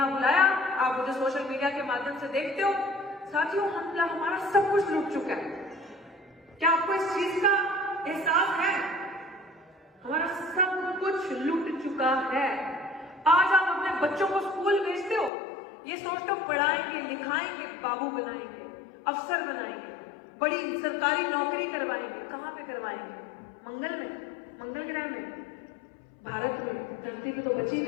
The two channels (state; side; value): drops out; right; at 15.3 s